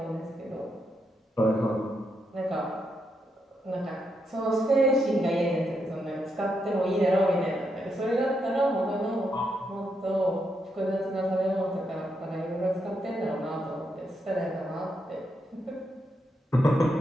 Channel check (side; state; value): both; normal; correlation 0.81